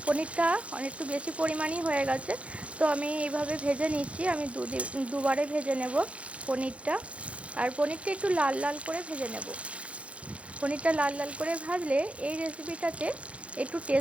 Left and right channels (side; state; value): left; late; 0.062 ms